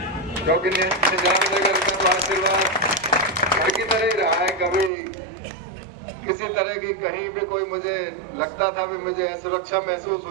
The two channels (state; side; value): drops out; left; at 4.9 s